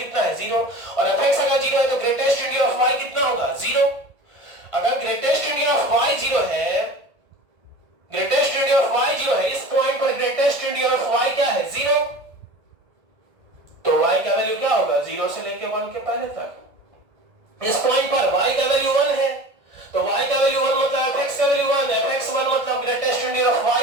है 0। और fx अगर 0 है तो ग्रेटेस्ट इंटीजर ऑफ y कितना होगा 0। अगर ग्रेटेस्ट इंटीजर ऑफ y 0 है, ग्रेटेस्ट इंटीजर ऑफ y 0 है, इस पॉइंट पर ग्रेटेस्ट इंटीजर ऑफ y क्या है 0, तो y का वैल्यू क्या होगा 0 से लेके 1 के पहले तक। इस पॉइंट पर y का वैल्यू 1 है तो y का वैल्यू 1 मतलब fx का वैल्यू 1, fx 1 मतलब ग्रेटेस्ट इंटीजर ऑफ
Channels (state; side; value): late; left; 1.8 ms